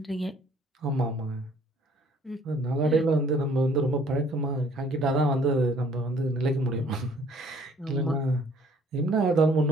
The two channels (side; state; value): both; normal; correlation 0.58